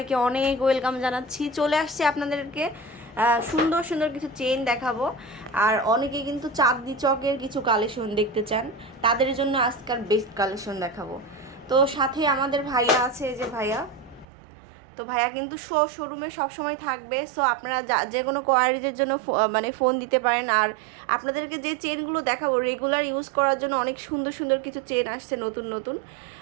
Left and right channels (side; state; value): left; drops out; at 14.2 s